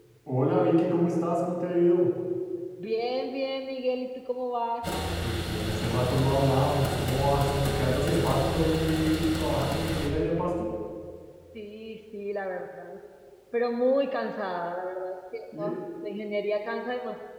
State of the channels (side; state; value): both; identical; correlation 1.00